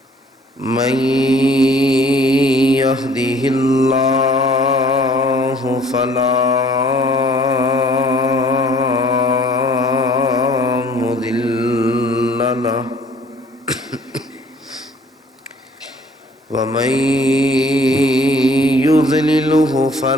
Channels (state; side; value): normal; both; correlation 0.55